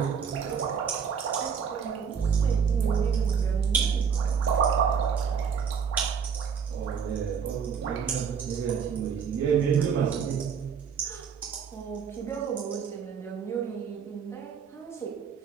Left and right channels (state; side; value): quieter; left; 6.7 dB